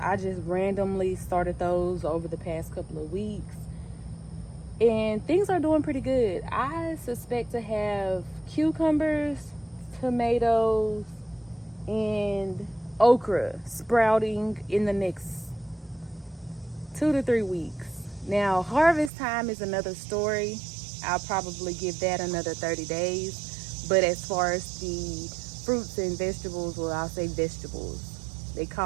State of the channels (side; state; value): left; drops out; at 19.1 s